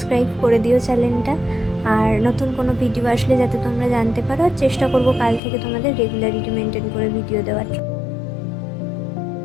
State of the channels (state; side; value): drops out; right; at 5.4 s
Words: করে দিও চ্যানেলটা। আর নতুন কোনো ভিডিও আসলে যাতে তোমরা জানতে পারো, চেষ্টা করবো কাল থেকে তোমাদের রেগুলারিটি মেনটেন করে ভিডিও দেওয়ার।